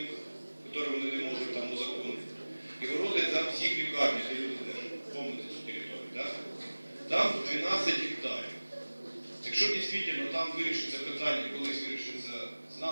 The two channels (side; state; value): both; inverted; correlation -1.00